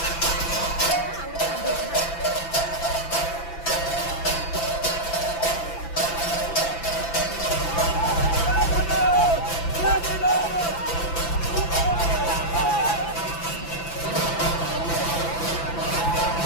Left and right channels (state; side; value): late; right; 6.0 ms